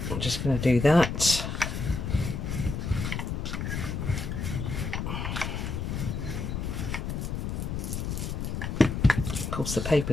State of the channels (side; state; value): left; noise; rumble, 3 dB below the sound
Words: just going to do that. Of course, the